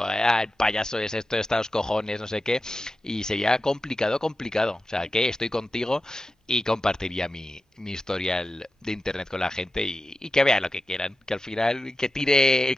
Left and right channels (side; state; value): both; normal; correlation 0.93